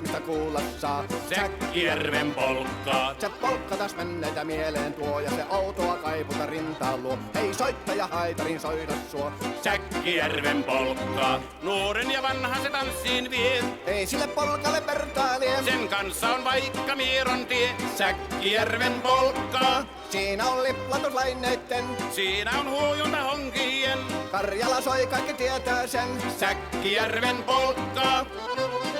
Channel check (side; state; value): both; identical; correlation 1.00